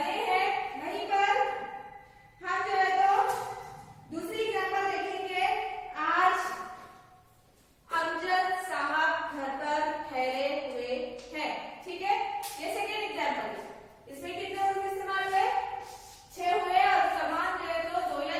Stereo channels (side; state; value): both; identical; correlation 1.00